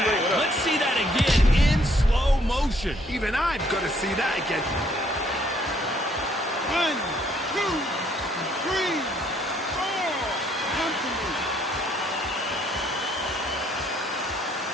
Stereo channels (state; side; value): normal; both; correlation 0.66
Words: Let's see that again in slow motion. Even I've got to see that again. 1, 2, 3, 4. Come to me.